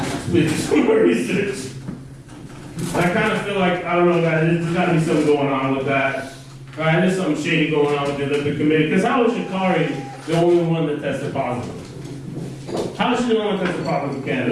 Please do some more research. I kind of feel like, I don't know, guys, there's got to be something going on with that. Right? There's something shady going on with the Olympic Committee. Because how was Sha'Carri the only one that tested positive? How is she the one that tested positive in Canada?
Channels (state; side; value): identical; both; correlation 1.00